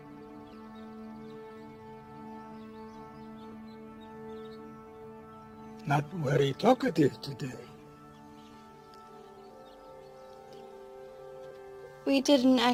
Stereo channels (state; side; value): identical; both; correlation 1.00